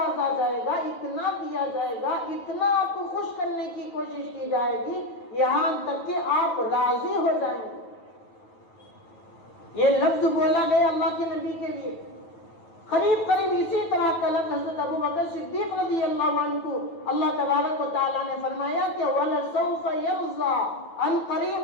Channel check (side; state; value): right; late; 9.2 ms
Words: جائے گا، اتنا دیا جائے گا، اتنا آپ کو خوش کرنے کی کوشش کی جائے گی، یہاں تک کہ آپ راضی ہو جائیں گے۔ یہ لفظ بولا گیا اللہ کے نبی کے لیے۔ قریب قریب اسی طرح کا لفظ حضرت ابو بکر صدیق رضی اللہ عنہ کو اللہ تبارک و تعالیٰ نے فرمایا کہ وَلَسَوْفَ يَرْضَىٰ، ان